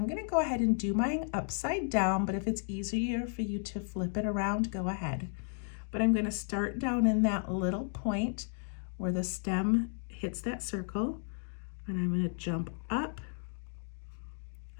going to go ahead and do mine upside down, but if it's easier for you to flip it around, go ahead. But I'm going to start down in that little point where the stem hits that circle, and I'm going to jump up,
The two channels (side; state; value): right; silent; 55 dB below the other